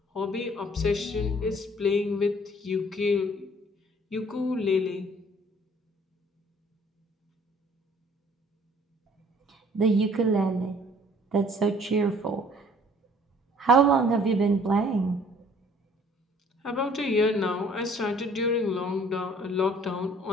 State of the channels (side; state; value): both; normal; correlation 0.56